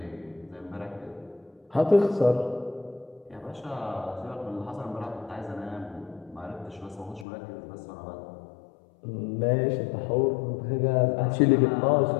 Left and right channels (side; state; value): right; drops out; at 7.2 s